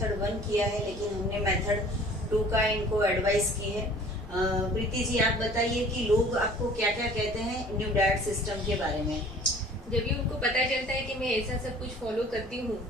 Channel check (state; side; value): normal; both; correlation 0.50